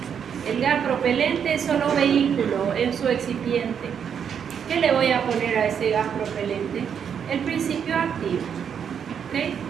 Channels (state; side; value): quieter; left; 7.7 dB